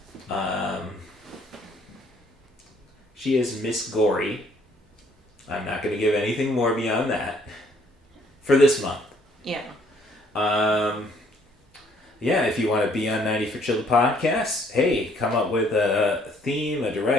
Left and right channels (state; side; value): normal; both; correlation 0.63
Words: She is Miss Gory. I'm not going to give anything more beyond that for this month. Yeah. Yeah, if you want to be on 90 for Chill the podcast, hey, come up with a theme, a